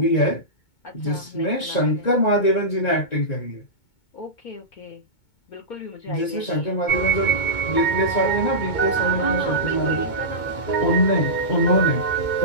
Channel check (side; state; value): right; late; 2.2 ms